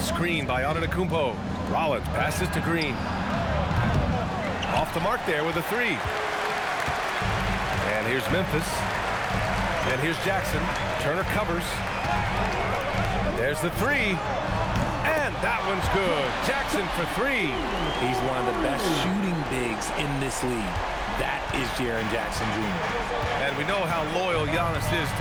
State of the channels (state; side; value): identical; both; correlation 1.00